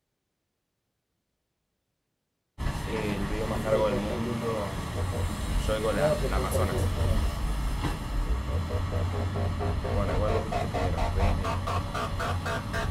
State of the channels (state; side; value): identical; both; correlation 1.00